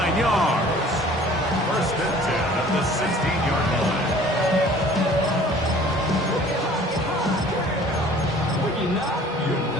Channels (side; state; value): both; normal; correlation 0.50